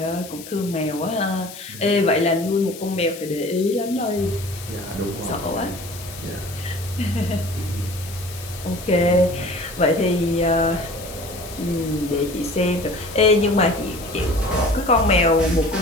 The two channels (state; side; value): noise; left; hiss, 15 dB below the sound